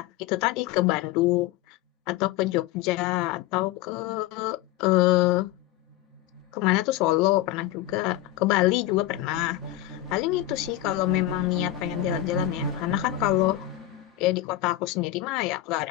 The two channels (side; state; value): right; quieter; 14.1 dB